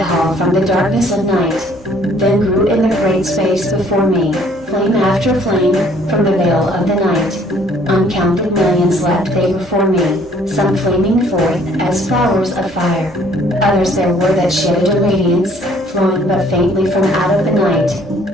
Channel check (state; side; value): normal; both; correlation 0.60